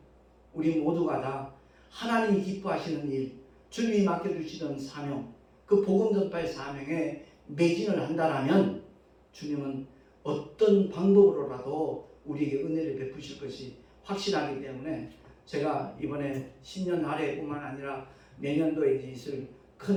우리 모두가 다 하나님이 기뻐하시는 일, 주님이 맡겨주시는 사명, 그 복음 전파의 사명에 매진을 한다라면 주님은 어떤 방법으로라도 우리에게 은혜를 베푸실 것이 확실하기 때문에 제가 이번에 신년 할애뿐만 아니라 내년도에 있을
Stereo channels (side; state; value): both; identical; correlation 1.00